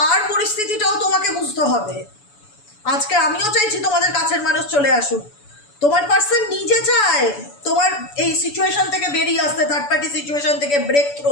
পরিস্থিতিটাও তোমাকে বুঝতে হবে। আজকে আমিও চাইছি তোমাদের কাছের মানুষ চলে আসুক, তোমার পার্সন নিজে চায় তোমার এই সিচুয়েশন থেকে বেরিয়ে আসতে, থার্ড পার্টি সিচুয়েশন থেকে ব্রেক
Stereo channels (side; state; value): right; late; 7.0 ms